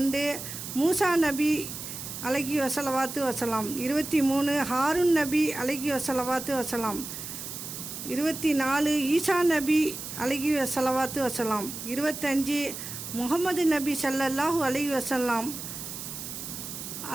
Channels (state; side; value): noise; right; hiss, 8 dB below the sound